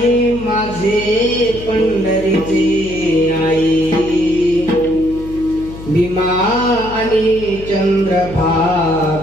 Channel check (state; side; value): noise; left; hum, 14 dB below the sound